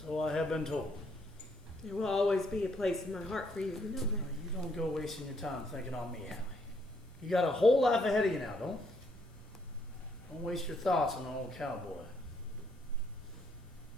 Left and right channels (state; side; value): normal; both; correlation 0.71